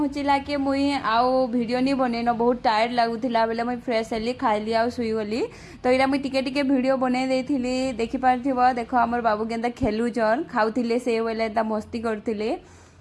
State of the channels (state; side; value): identical; both; correlation 1.00